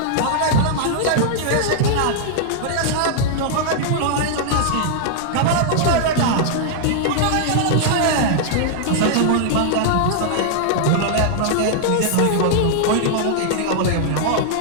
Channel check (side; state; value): both; different; correlation -0.01